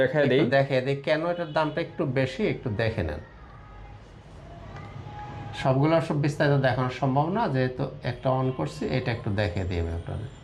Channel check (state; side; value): identical; both; correlation 1.00